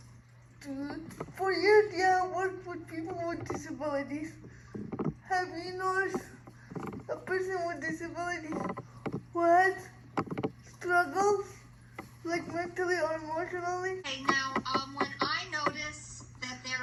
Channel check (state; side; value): identical; both; correlation 1.00